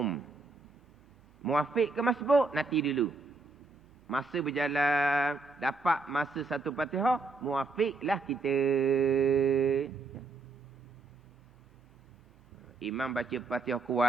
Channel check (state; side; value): quieter; left; 3.6 dB